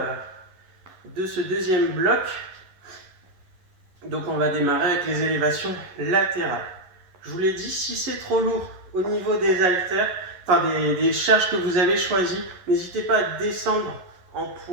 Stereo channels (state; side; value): late; left; 11 ms